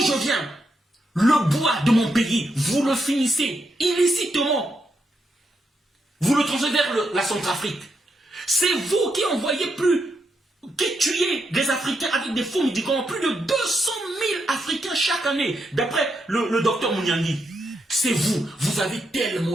viens, le bois de mon pays, vous le finissez illicitement. Vous le transférez vers la Centrafrique. C'est vous qui envoyez qui tuez des Africains avec des faux médicaments. Plus de 200 000 Africains chaque année, d'après le docteur Mouniangui. C'est vous. Vous avez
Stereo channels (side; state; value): both; normal; correlation 0.81